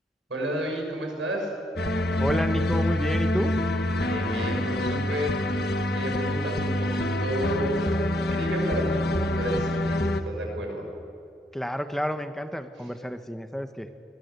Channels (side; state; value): both; normal; correlation 0.74